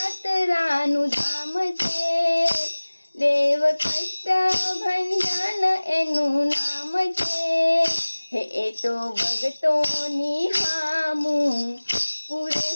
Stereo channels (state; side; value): inverted; both; correlation -1.00